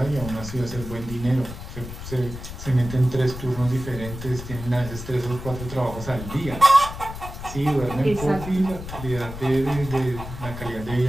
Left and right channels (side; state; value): left; noise; rumble, 10 dB below the sound